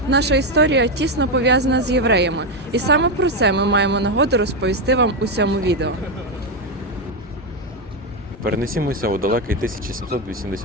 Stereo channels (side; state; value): both; normal; correlation 0.07